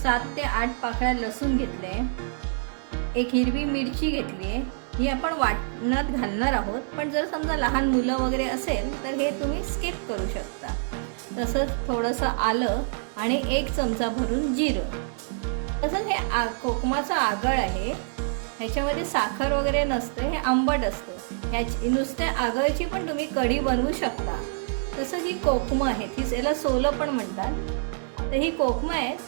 7 ते 8 पाकळ्या लसूण घेतले, एक हिरवी मिरची घेतली आहे. ही आपण वाटणात घालणार आहोत, पण जर समजा लहान मुलं वगैरे असेल तर हे तुम्ही स्किप करू शकता. तसंच थोडंसं आलं आणि 1 चमचा भरून जिरं. तसंच हे कोकमाचा आगळ आहे. ह्याच्यामध्ये साखर वगैरे नसते, हे आंबट असतं. ह्याची नुसत्या आगळची पण तुम्ही कढी बनवू शकता. तसंच ही कोकमं आहे, ती याला सोलं पण म्हणतात. तर ही कोकमं आहे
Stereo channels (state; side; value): silent; left; digital silence